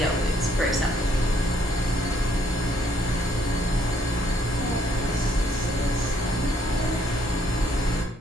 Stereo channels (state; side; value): normal; both; correlation 0.68